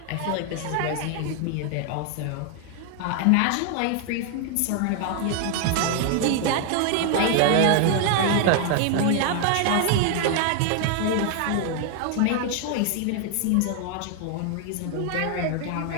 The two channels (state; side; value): different; both; correlation 0.00